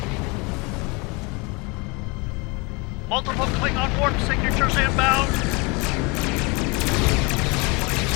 Multiple Klingon warp signatures inbound.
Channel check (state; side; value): quieter; right; 28.2 dB